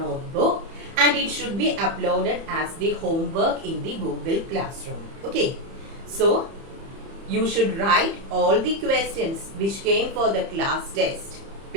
and it should be uploaded as the homework in the Google Classroom. Okay. So you should write all the questions which came for the class test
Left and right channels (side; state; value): left; late; 30 ms